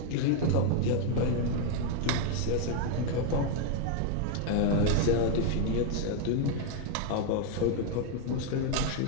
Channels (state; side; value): different; both; correlation 0.00